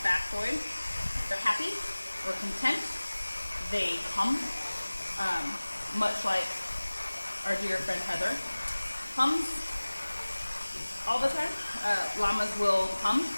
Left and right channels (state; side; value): inverted; both; correlation -1.00